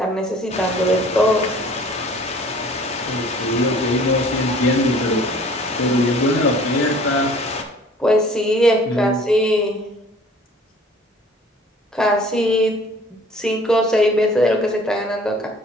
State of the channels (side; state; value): both; normal; correlation 0.51